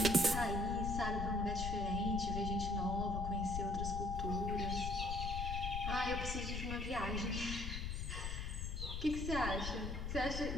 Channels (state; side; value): noise; left; rumble, 3 dB below the sound